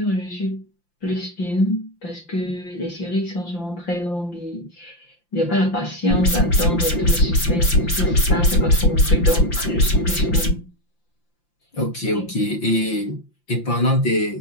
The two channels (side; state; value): right; late; 5.8 ms